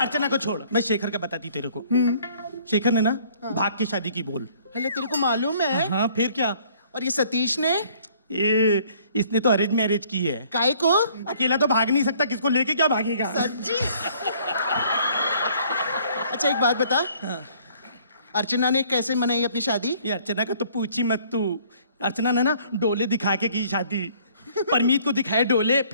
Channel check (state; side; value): inverted; both; correlation -0.59